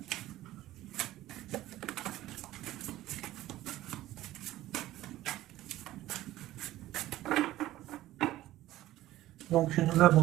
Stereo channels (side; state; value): left; quieter; 15.2 dB